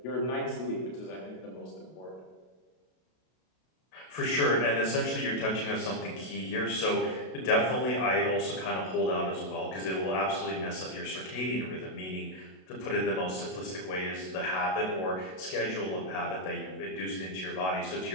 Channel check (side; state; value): right; late; 32 ms